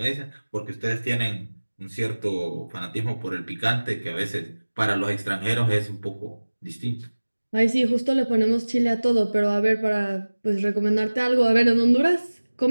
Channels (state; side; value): inverted; both; correlation -1.00